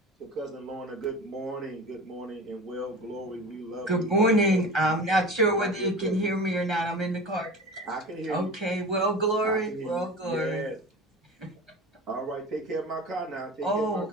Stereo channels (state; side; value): normal; both; correlation 0.33